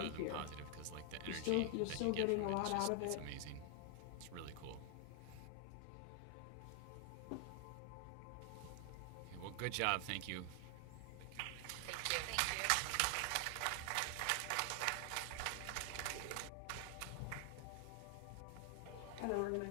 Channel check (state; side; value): different; both; correlation 0.00